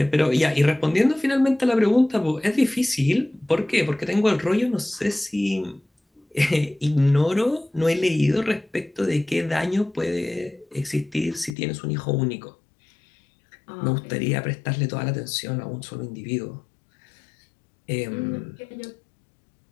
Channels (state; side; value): drops out; right; at 11.6 s